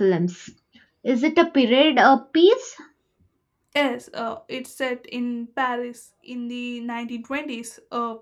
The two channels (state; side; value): identical; both; correlation 1.00